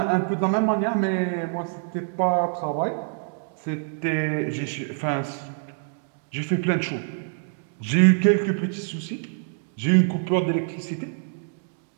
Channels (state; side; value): silent; left; 61 dB below the other